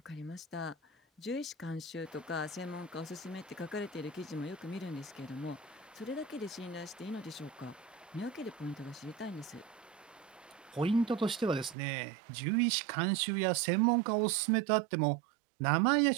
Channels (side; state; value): left; drops out; at 11.8 s